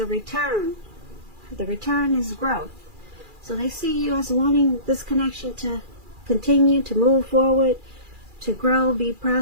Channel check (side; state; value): left; late; 2.4 ms